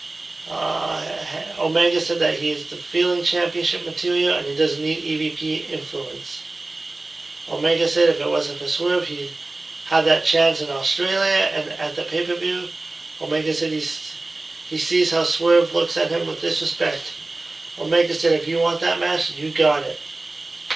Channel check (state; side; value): quieter; left; 3.1 dB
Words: Omega said that he is the feeling championship material and he doesn't need EVP influence. Omega said if it wasn't for Swerve, he'd have that chance in Australia and at the pay-per-view. Omega said he sees how Swerve looks at him with disrespect. Omega said if you want that match, you got it.